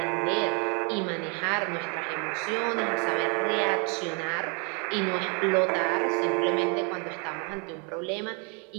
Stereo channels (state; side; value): quieter; left; 35.7 dB